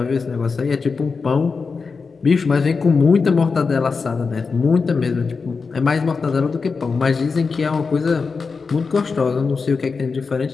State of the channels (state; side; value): quieter; right; 4.8 dB